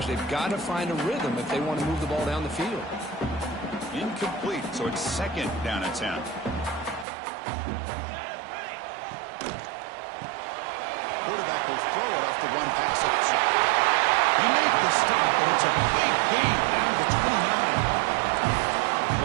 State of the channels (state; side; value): drops out; left; at 7.1 s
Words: They've got to find a rhythm if they want to move the ball down the field. Incomplete, so it's 2nd down and 10. Quarterback will throw it off the run-pass option. They make the stop, but it's a big gain down to the 29.